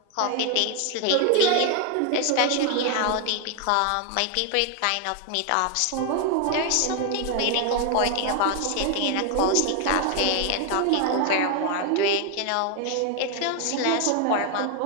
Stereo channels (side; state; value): both; different; correlation 0.01